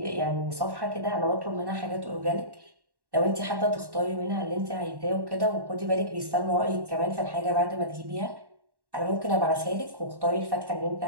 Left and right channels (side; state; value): left; late; 1.1 ms